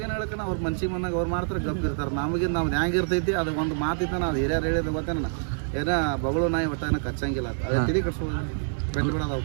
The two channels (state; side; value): silent; left; digital silence